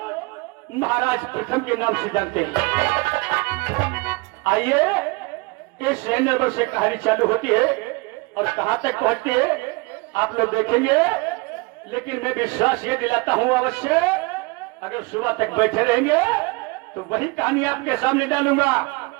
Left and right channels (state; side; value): quieter; left; 25.8 dB